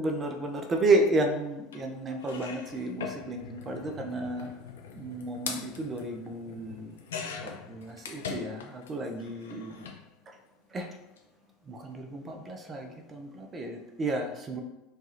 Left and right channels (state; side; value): normal; both; correlation 0.45